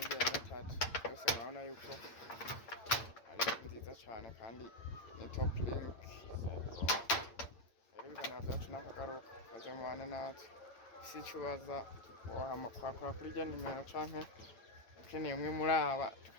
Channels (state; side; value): late; right; 8.9 ms